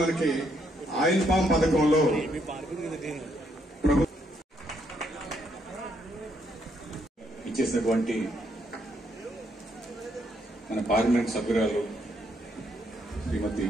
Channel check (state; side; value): normal; both; correlation 0.74